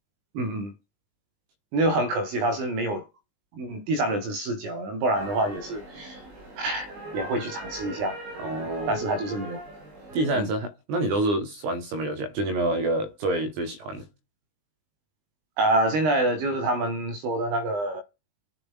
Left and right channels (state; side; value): late; left; 20 ms